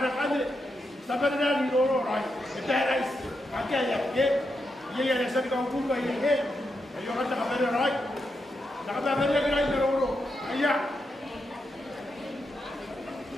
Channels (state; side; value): normal; both; correlation 0.84